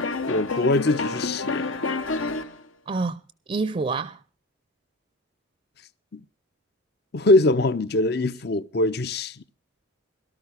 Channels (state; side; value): normal; both; correlation 0.29